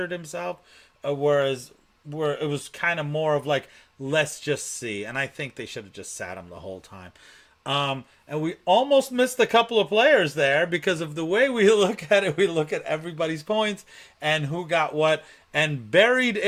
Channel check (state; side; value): identical; both; correlation 1.00